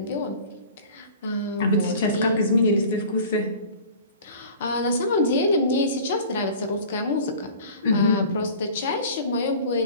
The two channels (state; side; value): inverted; both; correlation -0.43